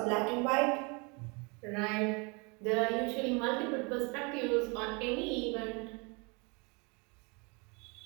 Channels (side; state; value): left; quieter; 31.2 dB